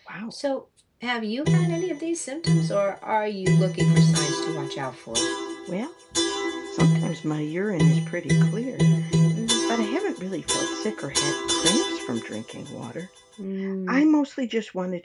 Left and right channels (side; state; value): both; identical; correlation 1.00